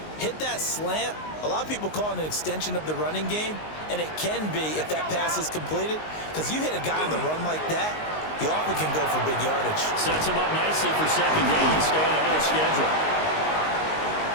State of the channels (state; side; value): late; right; 19 ms